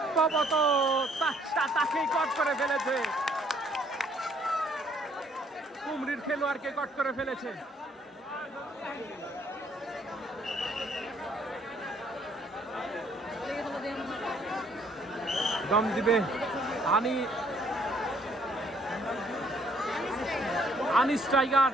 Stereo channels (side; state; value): both; normal; correlation 0.64